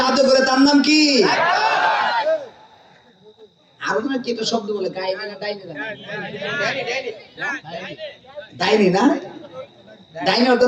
আদর করে তার নাম কি? আরো তুমি কি একটা শব্দ বলে, গাইনি না ডাইনি? ডাইনি না, ডাইনি অর্থ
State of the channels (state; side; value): identical; both; correlation 1.00